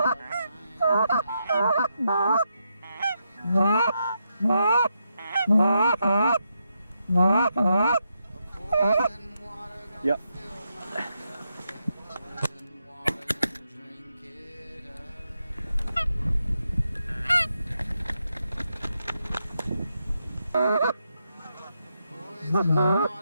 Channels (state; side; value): inverted; both; correlation -0.83